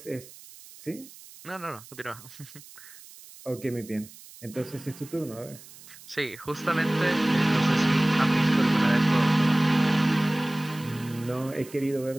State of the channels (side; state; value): right; noise; hiss, 20 dB below the sound